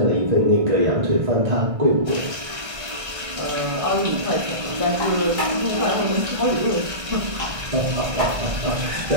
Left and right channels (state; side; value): late; left; 1.6 ms